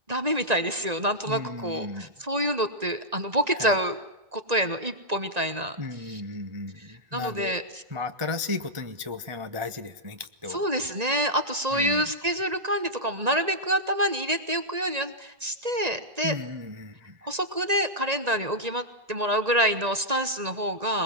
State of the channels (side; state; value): left; late; 1.9 ms